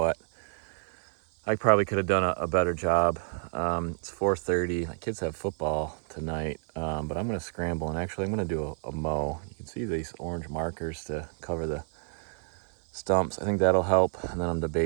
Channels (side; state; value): left; silent; digital silence